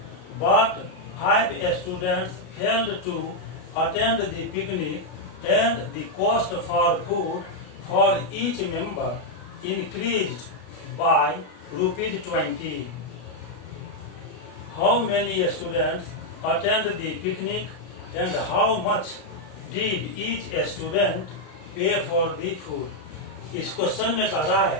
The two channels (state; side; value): late; right; 33 ms